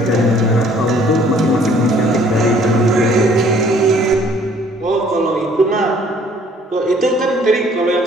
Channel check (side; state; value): both; normal; correlation 0.58